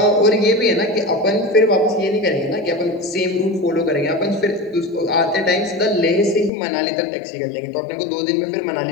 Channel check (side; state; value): right; drops out; at 6.5 s